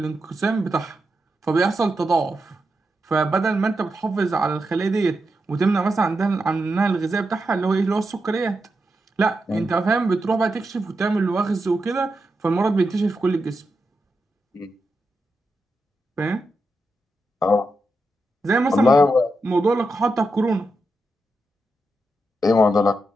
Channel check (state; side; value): normal; both; correlation 0.87